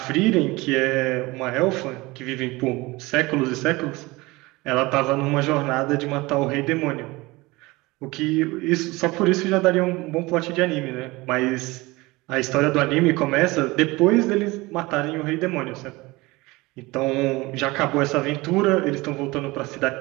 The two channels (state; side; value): quieter; left; 22.0 dB